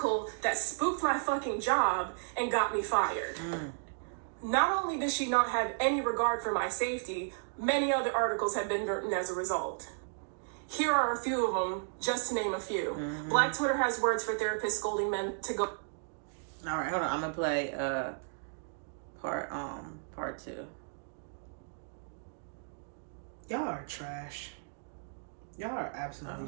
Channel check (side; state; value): left; silent; digital silence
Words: that spooked my fucking job and got me fired. Not only did she not have any regard for my safety, many other articles have been written as a result. Here are a few of them, just to name a few. Black Twitter has words for therapists scolding men to go. All right, hold on. I'm gonna play part 2. Y'all are trash. Y'all are